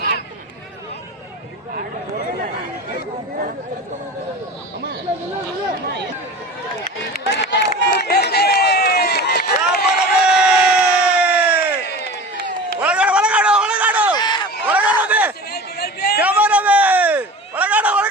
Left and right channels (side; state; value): both; normal; correlation 0.35